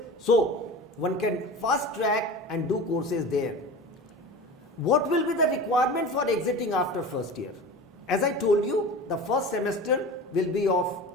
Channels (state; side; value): normal; both; correlation 0.33